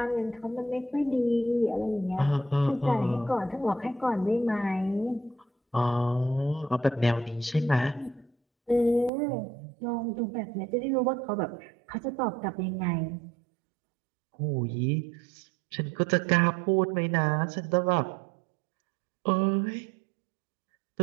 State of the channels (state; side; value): drops out; left; at 9.1 s